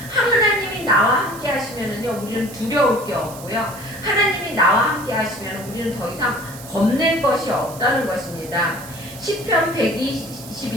하나님이 나와 함께 하시면은요, 우리는 두려울 게 없고요. 하나님이 나와 함께 하시면 우리는 더 이상 겁낼 것이 없다는 것입니다. 시편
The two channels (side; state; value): right; noise; hiss, 16 dB below the sound